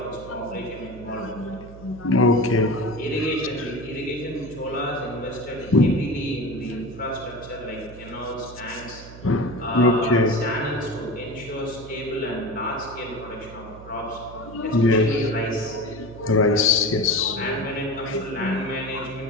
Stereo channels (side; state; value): right; noise; hum, 16 dB below the sound